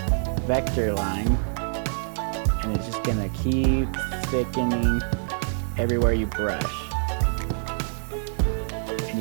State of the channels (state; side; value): silent; left; 61 dB below the other